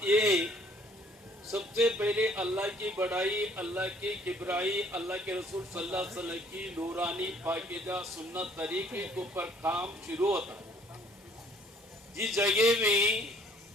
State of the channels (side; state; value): both; normal; correlation 0.60